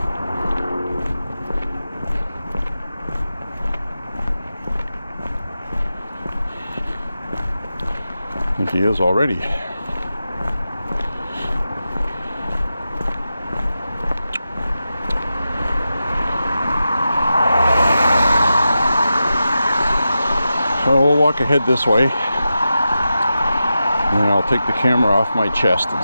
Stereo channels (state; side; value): inverted; both; correlation -0.91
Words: I think he is already. So we'll walk ahead this way, and then I'll take the camera off my chest and